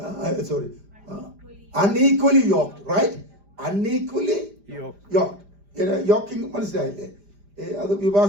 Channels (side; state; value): left; late; 5.0 ms